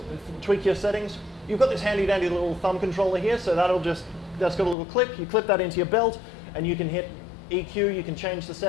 tweak your settings, you've got this handy dandy little thumb controller here, so that's got a little clip. You clip that into your belt and you can hit EQ, you can change the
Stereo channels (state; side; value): drops out; right; at 4.8 s